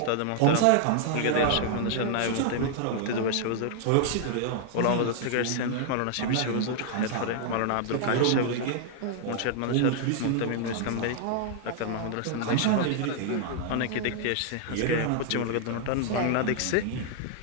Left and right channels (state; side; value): different; both; correlation 0.00